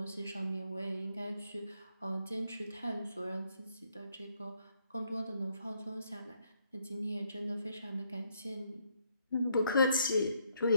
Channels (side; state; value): both; inverted; correlation -0.72